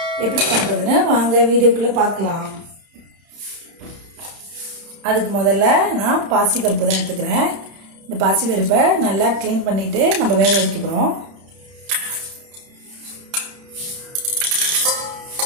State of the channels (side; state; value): left; late; 31 ms